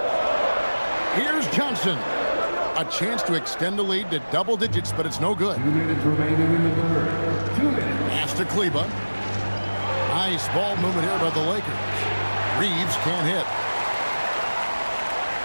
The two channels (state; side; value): inverted; both; correlation -1.00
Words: Here's Johnson. A chance to extend the lead to double digits, but it's no good. 2 minutes remaining in the third. 2 minutes. Pass to Kleber. Nice ball movement here by the Lakers. Reeves can't hit.